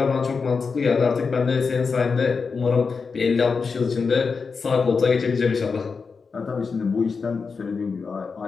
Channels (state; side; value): quieter; right; 5.0 dB